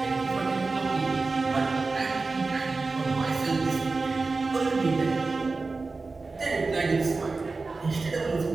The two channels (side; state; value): left; quieter; 3.8 dB